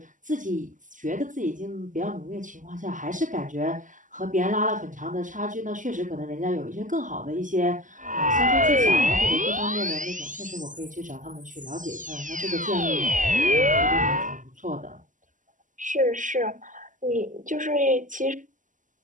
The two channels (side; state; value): left; late; 0.37 ms